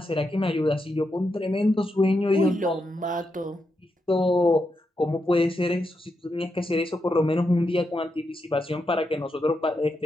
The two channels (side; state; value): both; normal; correlation 0.85